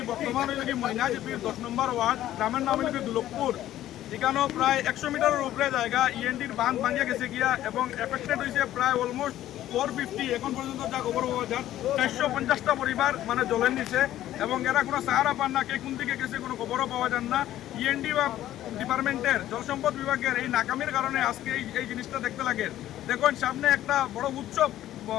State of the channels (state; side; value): quieter; right; 13.2 dB